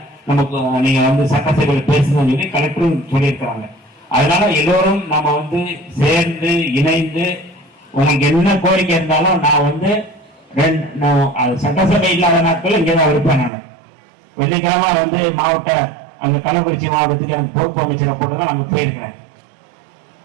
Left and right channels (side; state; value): left; drops out; at 13.5 s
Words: நமக்கு நீங்க வந்து சட்டசபையில் பேசுன்னு சொல்லி கலெக்டரும் சொல்லியிருக்கிறாங்க. அதனால எல்லோரும் நம்ம வந்து சேர்ந்து இணைந்து உங்களுக்கு என்ன கோரிக்கை இருந்தாலும் நான் வந்து சட்டசபை இல்லாத நாட்கள் இங்கேதான் இருப்பேன். நான் வெள்ளிக்கிழமை வந்து மாவட்ட அங்க கள்ளக்குறிச்சி மாவட்டத்துக்கு எனக்கு பொறுப்பு அமைச்சரை போட்டுதான் அங்க போயிருக்கிறேன்.